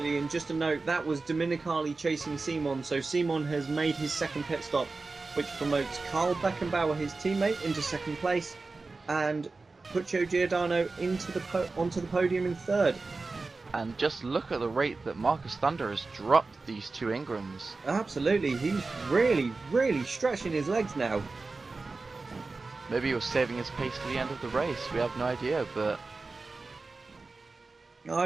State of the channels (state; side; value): quieter; left; 3.8 dB